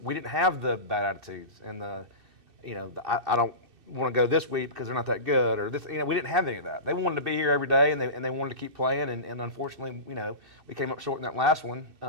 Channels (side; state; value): left; late; 2.6 ms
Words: didn't have the bad attitudes and I don't want to go this week because they're not that good, or this, we didn't have any of that. They wanted to be here every day, and they wanted to keep playing, and unfortunately, we came up short in that last one.